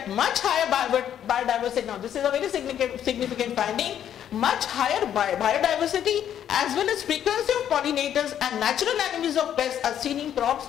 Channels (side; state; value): right; quieter; 10.0 dB